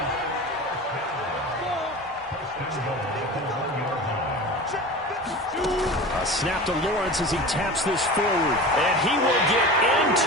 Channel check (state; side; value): normal; both; correlation 0.33